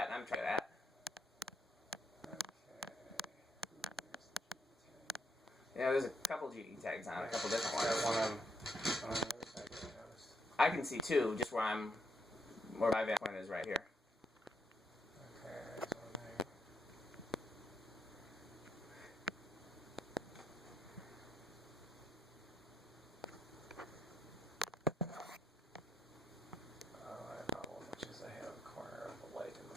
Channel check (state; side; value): normal; both; correlation 0.78